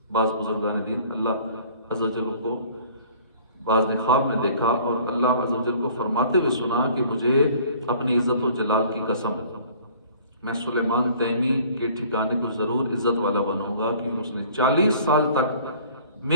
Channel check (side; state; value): both; inverted; correlation -0.52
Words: بعض بزرگان دین اللہ عز و جل کو بعض نے خواب میں دیکھا اور اللہ عز و جل کو فرماتے ہوئے سنا کہ مجھے اپنی عزت و جلال کی قسم، میں سلیمان تیمی کے ٹھکانے کو ضرور عزت والا بناؤں گا، کیونکہ اس نے 40 سال تک